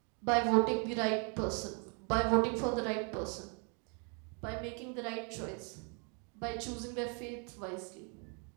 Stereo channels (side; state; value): left; quieter; 37.4 dB